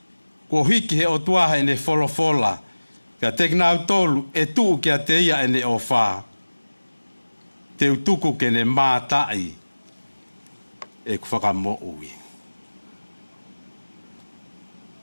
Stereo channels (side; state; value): both; inverted; correlation -1.00